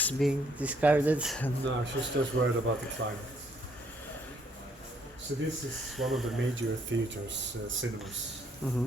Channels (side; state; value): both; normal; correlation 0.68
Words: being discarded. No, she's just worried about the climate. So this is one of the major theaters, cinemas,